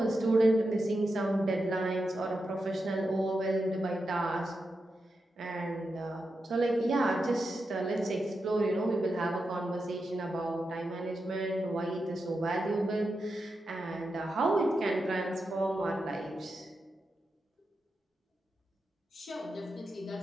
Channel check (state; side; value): normal; both; correlation 0.88